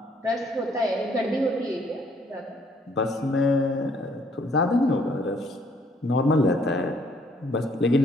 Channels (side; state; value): both; normal; correlation 0.65